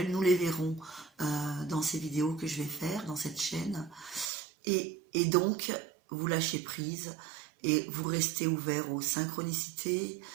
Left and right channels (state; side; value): drops out; left; at 4.3 s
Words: Nous les verrons dans ces vidéos que je vais faire dans cette chaîne. Et donc, vous lâchez prise et vous restez ouvert aux synchronicités,